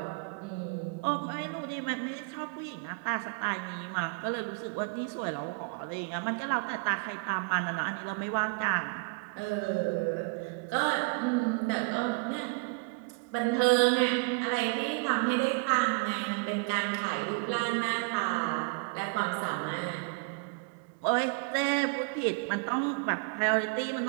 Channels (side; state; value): left; quieter; 30.5 dB